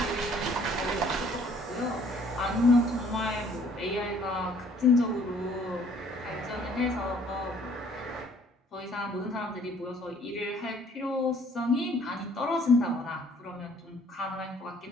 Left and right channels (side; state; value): both; normal; correlation 0.59